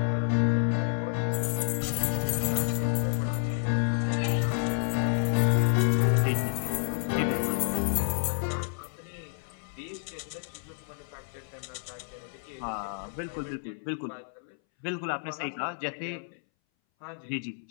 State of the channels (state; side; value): silent; right; 58 dB below the other